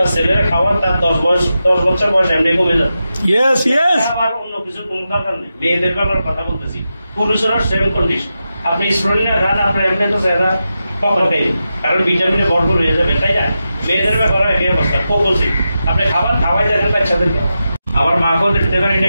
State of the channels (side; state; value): both; inverted; correlation -0.89